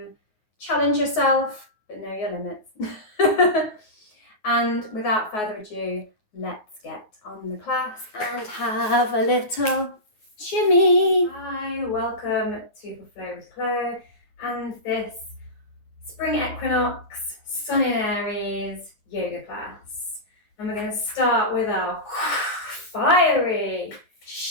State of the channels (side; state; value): right; late; 9.5 ms